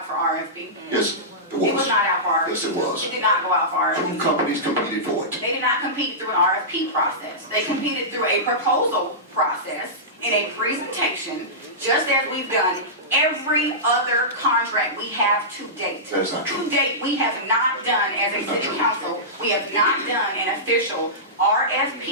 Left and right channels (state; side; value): normal; both; correlation -0.17